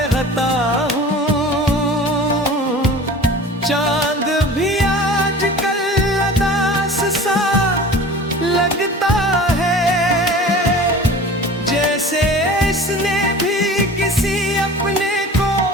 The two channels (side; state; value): both; normal; correlation 0.40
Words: हूँ। चांद भी आजकल उदास सा लगता है, जैसे इसने भी किसी अपने को